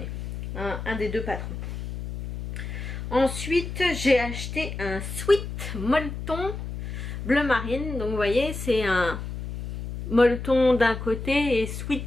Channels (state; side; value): noise; left; hum, 7 dB below the sound